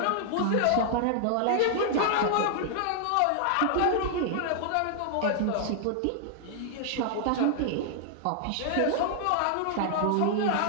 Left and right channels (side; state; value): both; different; correlation -0.01